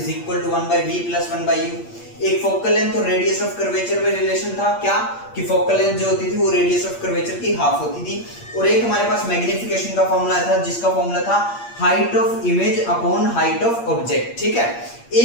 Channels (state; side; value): late; right; 8.5 ms